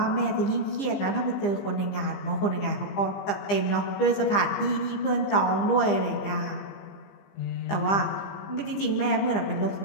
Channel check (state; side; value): late; right; 15 ms